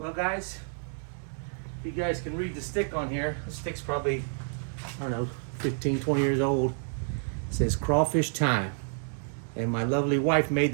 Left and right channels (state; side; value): silent; left; digital silence